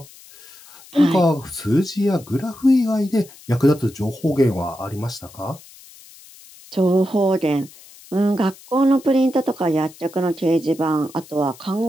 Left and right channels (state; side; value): noise; left; hiss, 22 dB below the sound